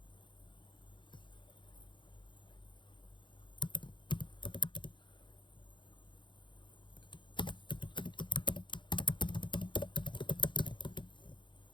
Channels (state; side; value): late; right; 0.23 ms